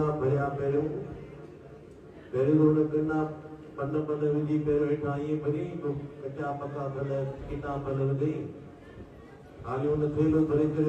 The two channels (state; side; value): identical; both; correlation 1.00